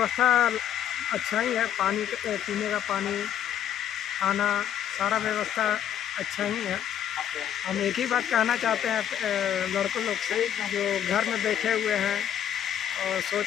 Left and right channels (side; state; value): right; quieter; 10.0 dB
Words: अच्छा ही है। पानी पीने का पानी, खाना, सारा व्यवस्था अच्छा ही है। हम एक ही बात कहना चाहते हैं लड़कों लोग से जो घर में बैठे हुए हैं और